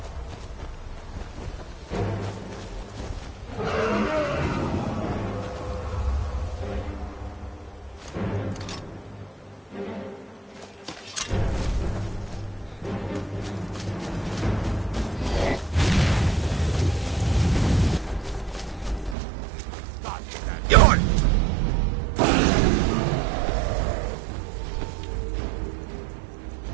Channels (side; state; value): left; drops out; at 19.2 s